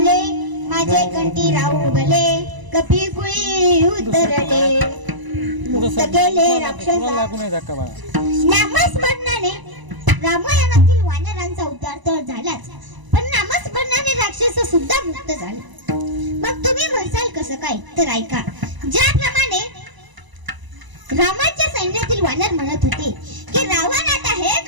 माझे कंठी राहू भले कपी कुळी उतरले मुक्त केले राक्षसा. नामस्मरणाने रामायणातील वानरांचा उद्धार तर झालाच, पण नामस्मरणाने राक्षस सुद्धा मुक्त झाले. मग तुम्ही म्हणसाल कसं काय, तर ऐका. ज्याप्रमाणे रामाच्या सैन्यातील वानर म्हणत होते की रावण आता हे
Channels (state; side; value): late; left; 1.0 ms